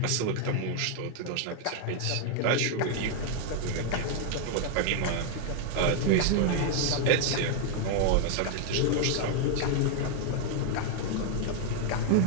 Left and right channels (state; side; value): different; both; correlation 0.00